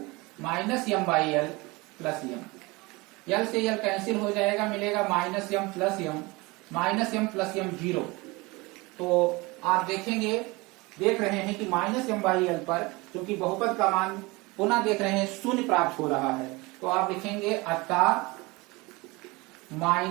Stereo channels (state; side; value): quieter; left; 24.0 dB